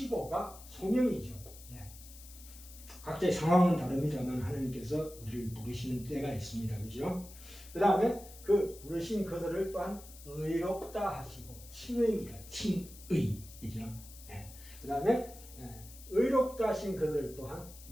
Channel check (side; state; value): left; noise; hiss, 18 dB below the sound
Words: 소명이죠. 각자의 상황은 다릅니다만 하나님께서 우리를 부르시는 때가 있습니다. 그죠? 그 다음에 그 부르신 그들을 또한 의롭다 하시고 칭의입니다. 칭의. 그죠? 그 다음에 의롭다 하신 그들 또한